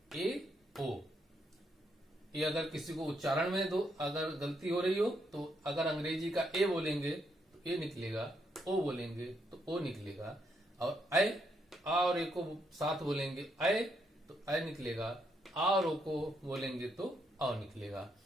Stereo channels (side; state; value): both; normal; correlation 0.77